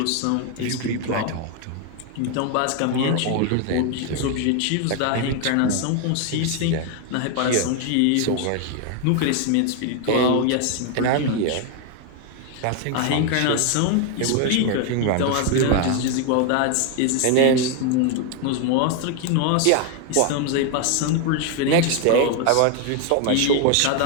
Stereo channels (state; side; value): different; both; correlation 0.01